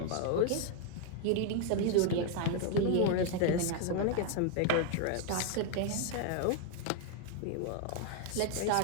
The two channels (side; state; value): both; different; correlation 0.00